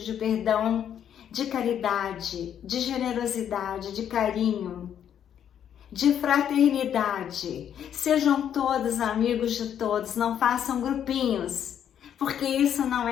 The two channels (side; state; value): right; quieter; 9.3 dB